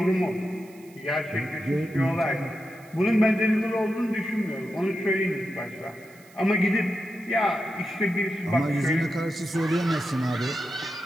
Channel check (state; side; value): noise; right; hiss, 26 dB below the sound